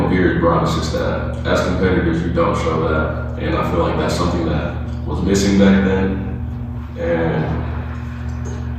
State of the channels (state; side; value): identical; both; correlation 1.00